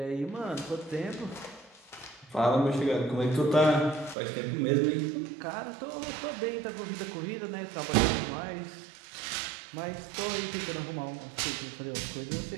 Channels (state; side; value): drops out; left; at 4.2 s